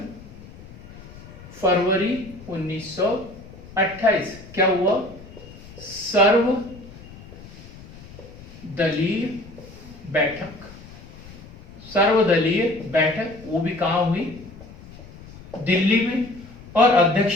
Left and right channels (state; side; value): noise; left; rumble, 18 dB below the sound